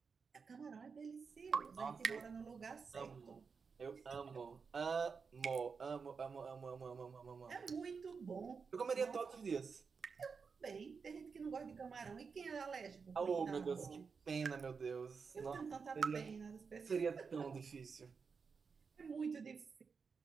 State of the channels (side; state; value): left; quieter; 5.4 dB